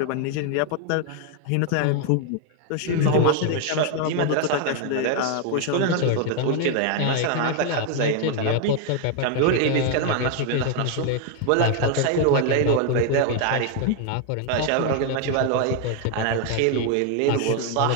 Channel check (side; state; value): both; different; correlation 0.01